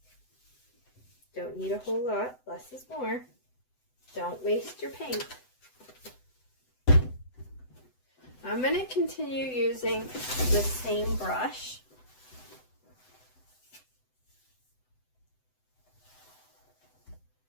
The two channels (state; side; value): late; right; 7.9 ms